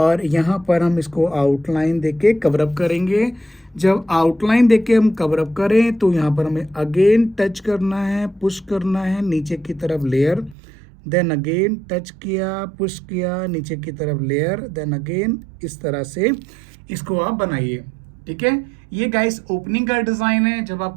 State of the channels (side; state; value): left; drops out; at 10.6 s